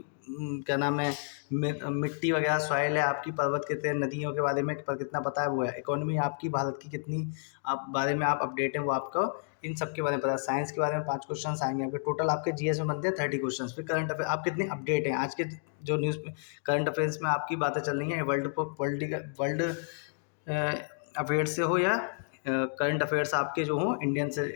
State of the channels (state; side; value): silent; right; digital silence